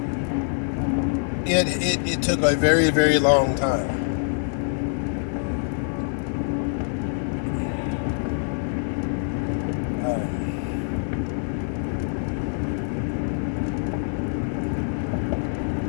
It took a very, very long time.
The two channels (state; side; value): silent; right; digital silence